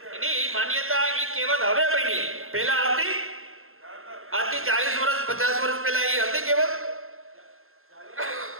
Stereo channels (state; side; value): late; left; 0.61 ms